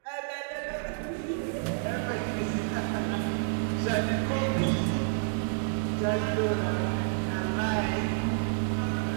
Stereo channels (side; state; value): left; silent; digital silence